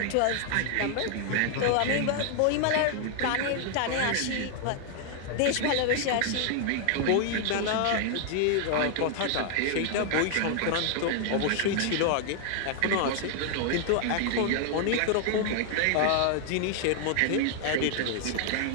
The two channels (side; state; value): both; different; correlation 0.00